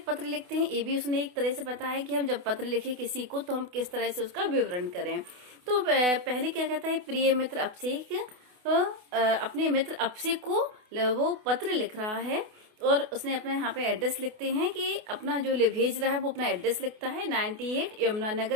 लिखते हैं ये भी उसने एक तरह से बताया कि हम जब पत्र लिखे किसी को तो हम किस तरह से उसका विवरण करें। तो पहले क्या कहता है, प्रिय मित्र अभिषेक अपने मित्र अभिषेक को वो पत्र लिख रहा है और उसने अपना यहाँ पे एड्रेस लिखते हैं कि अपना जो भेज रहा है वो अपना एड्रेस लिखता है 98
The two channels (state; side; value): late; left; 28 ms